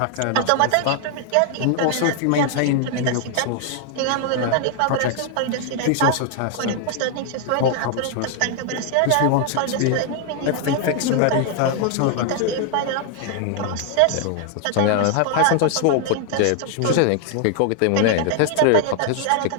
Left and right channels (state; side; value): different; both; correlation 0.00